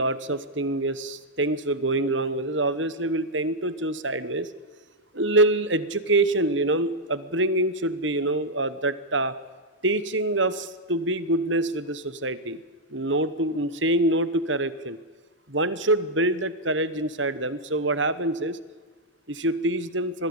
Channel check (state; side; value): normal; both; correlation -0.03